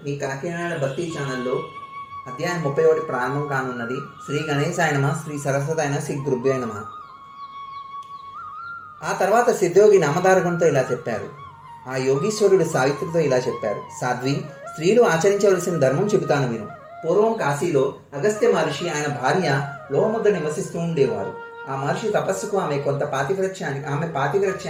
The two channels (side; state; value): both; identical; correlation 1.00